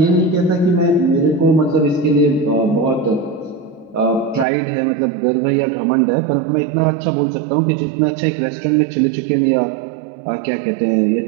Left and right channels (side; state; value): left; drops out; at 4.5 s